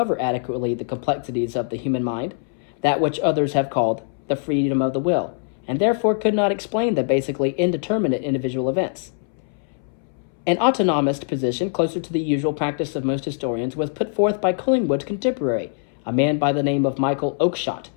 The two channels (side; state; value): right; silent; 64 dB below the other